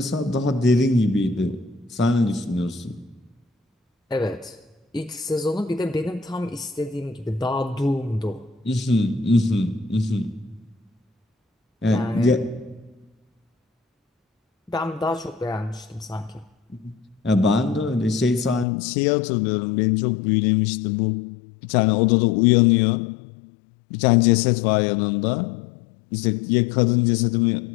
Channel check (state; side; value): drops out; right; at 18.7 s